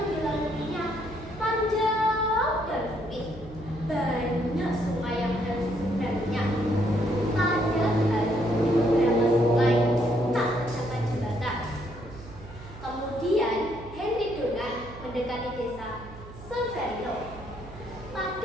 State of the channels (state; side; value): noise; right; hum, 16 dB below the sound